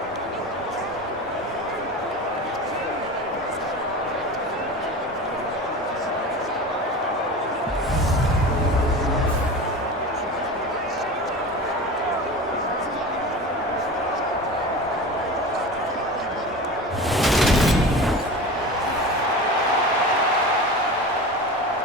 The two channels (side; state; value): both; normal; correlation 0.31